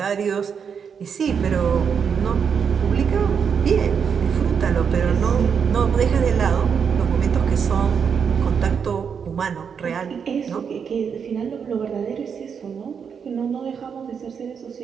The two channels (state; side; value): quieter; left; 6.8 dB